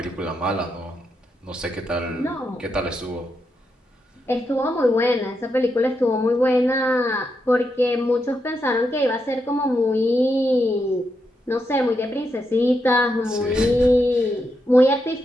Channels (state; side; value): normal; both; correlation 0.83